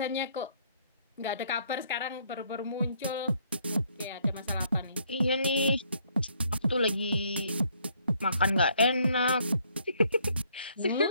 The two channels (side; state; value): both; inverted; correlation -0.67